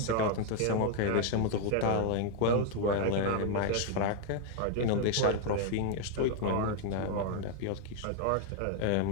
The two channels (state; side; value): different; both; correlation 0.00